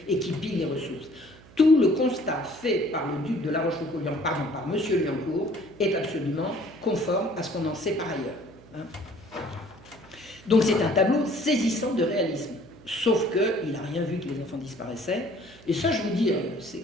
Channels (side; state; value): right; noise; hum, 23 dB below the sound